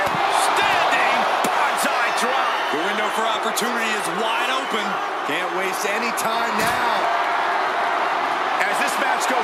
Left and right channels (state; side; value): identical; both; correlation 1.00